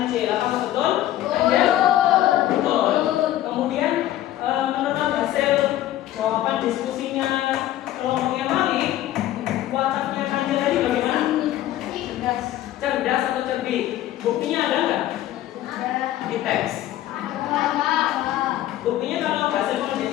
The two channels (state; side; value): quieter; right; 13.6 dB